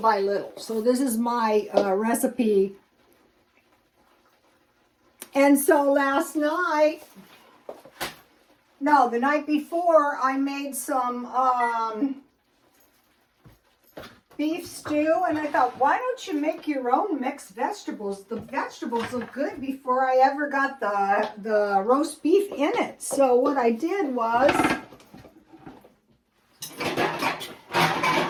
little. So this is my recipe. And so last night, no, the night before, I made some beef stew, and I thought, why don't you make your own mixed vegetables? The vegetables look good before I ever got the roast beef in it. So what I did was,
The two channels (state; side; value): identical; both; correlation 1.00